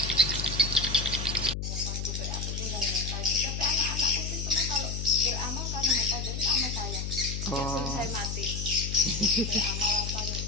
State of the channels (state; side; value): noise; left; hum, 4 dB below the sound